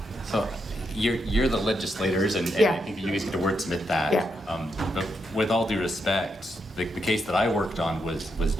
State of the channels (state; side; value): normal; both; correlation 0.81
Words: So you're the legislators, and Yeah. I think you guys get to wordsmith that. Yeah. But with all due respect, the case that I worked on was